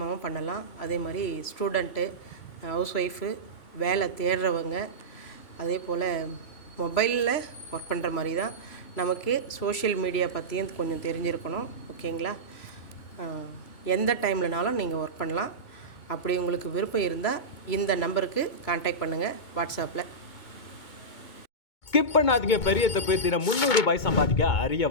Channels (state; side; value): late; right; 2.2 ms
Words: பண்ணலாம். அதே மாதிரி ஸ்டூடெண்ட்டு, ஹவுஸ் ஒய்ஃபு, வேலை தேடுறவங்க, அதே போல் மொபைலில் ஒர்க் பண்ணுற மாதிரி தான். நமக்கு சோஷியல் மீடியா பற்றியும் கொஞ்சம் தெரிஞ்சிருக்கணும். ஓகேங்களா? எந்த டைம்லனாலும் நீங்கள் ஒர்க் பண்ணலாம். அப்படி உங்களுக்கு விருப்பம் இருந்தால் இந்த நம்பருக்கு கான்டாக்ட் பண்ணுங்கள் வாட்ஸ்அப்பில். ஸ்கிப் பண்ணாதீங்க. பெரிய தப்பு. தினம் 300 ரூபாய் சம்பாதிக்க அரிய